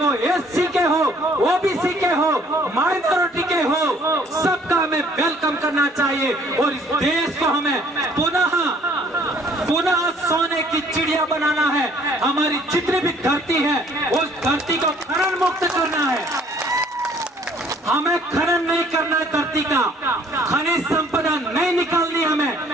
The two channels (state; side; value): normal; both; correlation 0.59